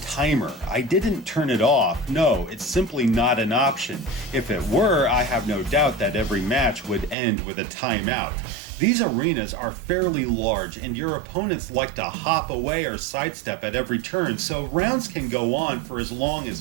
I didn't turn it off. No, it's simply not an option. If it were, I have no doubt that every match would end with a timeout. These arenas are fairly large, and your opponents like to hop away or sidestep at every turn, so rounds can go on for as long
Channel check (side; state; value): left; drops out; at 7.2 s